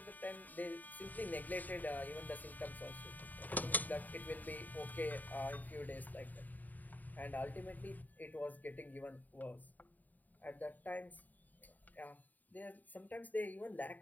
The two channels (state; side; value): late; right; 0.083 ms